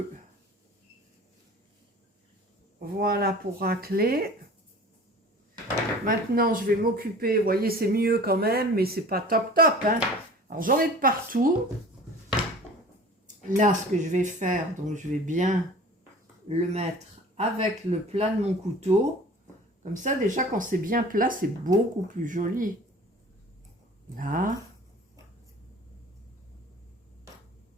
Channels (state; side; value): normal; both; correlation 0.43